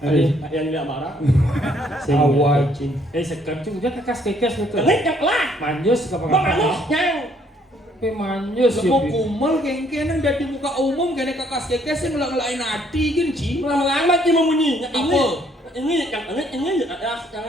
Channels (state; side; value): normal; both; correlation 0.66